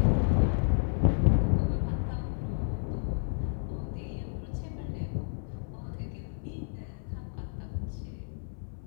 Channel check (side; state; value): right; silent; 57 dB below the other